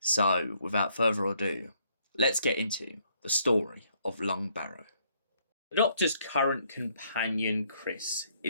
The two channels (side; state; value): both; inverted; correlation -0.69